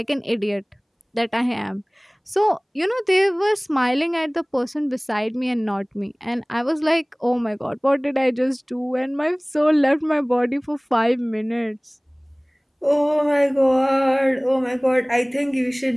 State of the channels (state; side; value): identical; both; correlation 1.00